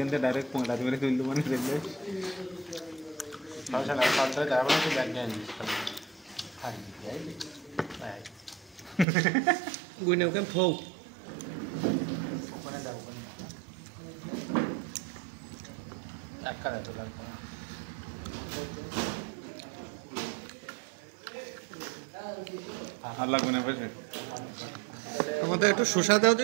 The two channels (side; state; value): left; drops out; at 9.1 s